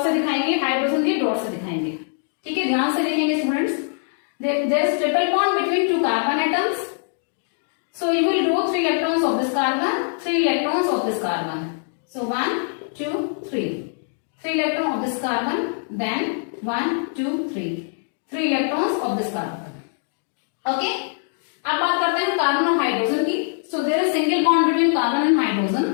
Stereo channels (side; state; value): right; silent; digital silence